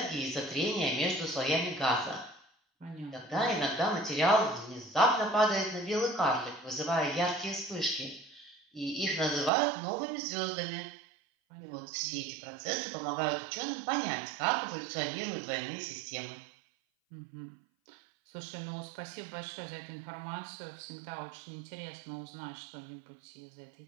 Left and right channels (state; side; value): drops out; left; at 9.5 s